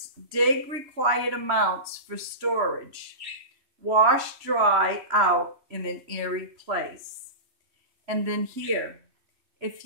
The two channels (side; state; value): left; late; 3.0 ms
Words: dig required amounts for storage. Wash dry out in an airy place. And then here, if